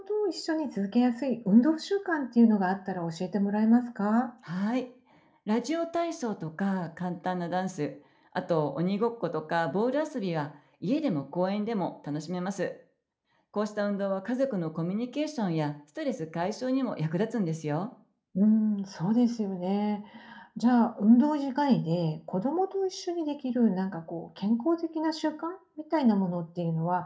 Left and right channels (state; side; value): identical; both; correlation 1.00